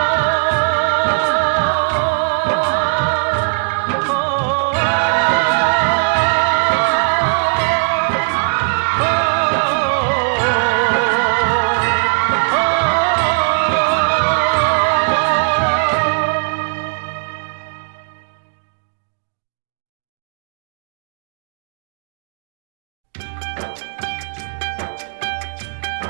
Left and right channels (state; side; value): silent; left; digital silence